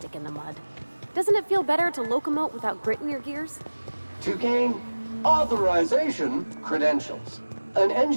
in the mud. Doesn't it feel better to locomote without grit in your gears? To gain authorization credentials, an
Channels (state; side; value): inverted; both; correlation -1.00